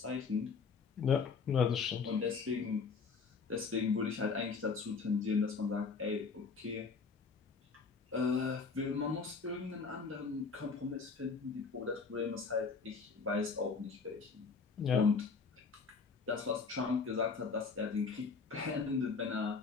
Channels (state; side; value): quieter; right; 5.0 dB